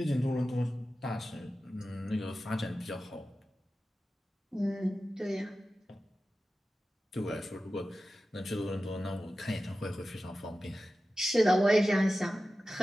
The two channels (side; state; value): both; normal; correlation 0.94